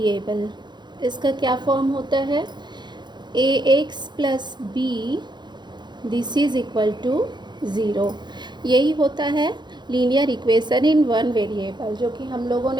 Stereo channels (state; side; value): late; left; 0.21 ms